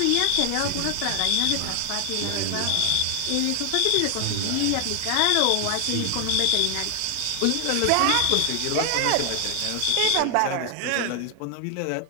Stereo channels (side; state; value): both; different; correlation 0.00